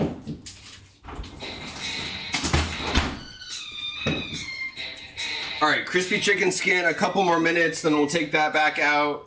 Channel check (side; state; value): both; identical; correlation 1.00